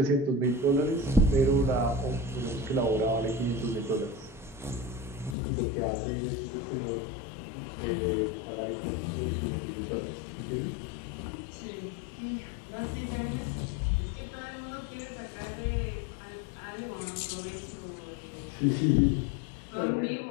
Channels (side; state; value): right; drops out; at 5.4 s